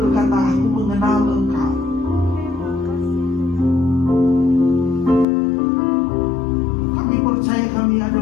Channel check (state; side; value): drops out; right; at 5.2 s